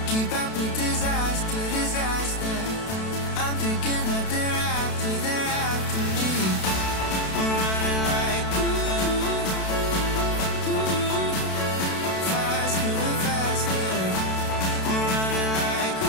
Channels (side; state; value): right; late; 32 ms